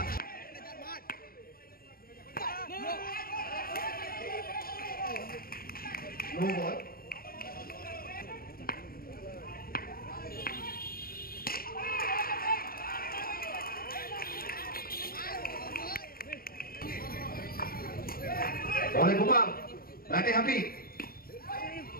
নো বল বলে গোপাল ব্যাটে হ্যাপি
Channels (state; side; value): late; right; 0.43 ms